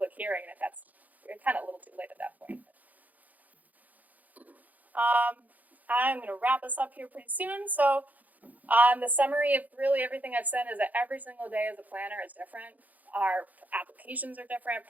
hearing, and that's kind of a little too late at that point. I'm going to wrap us up here pretty soon. So the summary of really everything I've said is that every single day as a planner is different. Our applications are different,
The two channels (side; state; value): left; late; 0.079 ms